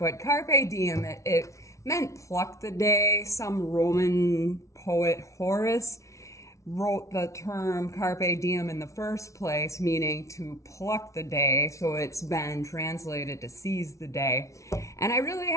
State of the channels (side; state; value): right; late; 0.14 ms